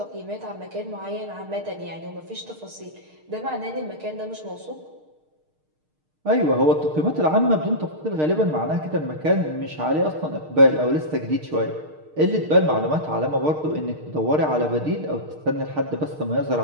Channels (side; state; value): left; late; 6.5 ms